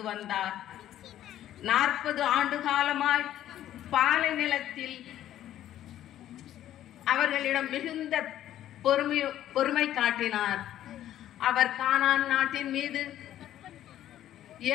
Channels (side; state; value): right; quieter; 12.2 dB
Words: வந்தார். 40 ஆண்டு காலமாய் பாலை நிலத்தில் அவர்களிடம் மிகுந்த பொறுமை காட்டினார். அவர் கானான் நாட்டின் மீது